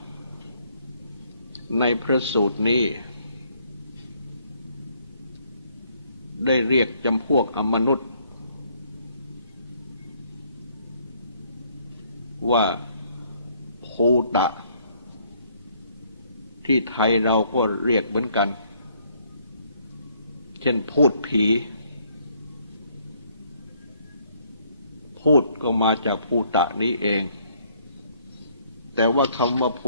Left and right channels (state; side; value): inverted; both; correlation -0.66